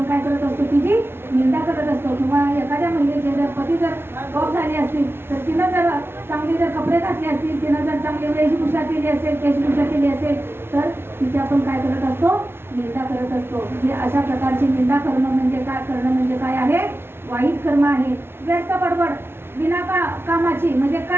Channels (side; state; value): left; late; 0.12 ms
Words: काय करत असतो, तिची निंदा करत असतो. किंवा एखाद्या महिलेचे जर पती जर गॉप झाली असतील तर तिनं जर चांगले जर कपडे घातले असतील, तिनं जर चांगली वेशभूषा केली असेल, केशभूषा केली असेल तर तिची आपण काय करत असतो, निंदा करत असतो. म्हणजे अशा प्रकारची निंदा करणं म्हणजे काय, करणं म्हणजे काय आहे, वाईट कर्म आहे. व्यर्थ बडबड बिना कामाची, म्हणजे